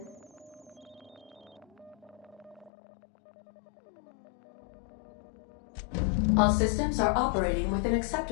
All systems are operating within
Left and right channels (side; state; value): right; drops out; at 2.7 s